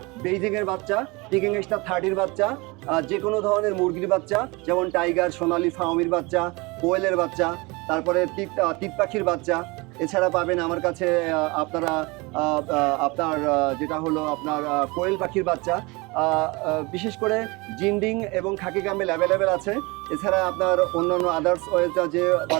বেইজিংয়ের বাচ্চা, পিকিং স্টার 30-র বাচ্চা, যে কোনো ধরনের মুরগির বাচ্চা, যেমন টাইগার, সোনালী, ফাউমির বাচ্চা, কোয়েলের বাচ্চা, তারপরে তিত পাখির বাচ্চা। এছাড়া পাবেন আমার কাছে আপনার যেটা হলো আপনার কোয়েল পাখির বাচ্চা, বিশেষ করে জিন্ডিং এবং খাকি ক্যাম্বেল অ্যাভেলেবেল আছে। এছাড়া আপনার অন্যান্য আদার্স যে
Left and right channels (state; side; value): quieter; left; 25.6 dB